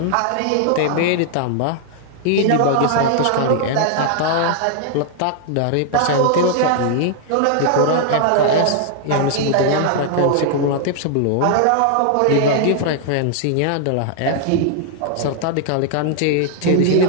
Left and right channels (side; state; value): both; different; correlation -0.01